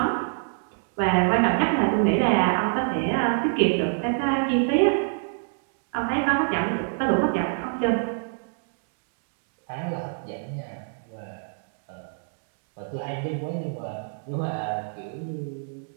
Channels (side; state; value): left; silent; digital silence